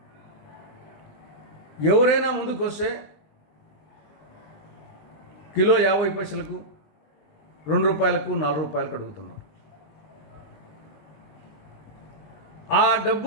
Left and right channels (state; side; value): late; right; 20 ms